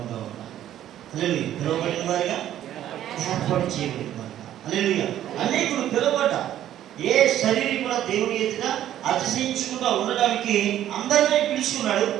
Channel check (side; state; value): left; quieter; 11.9 dB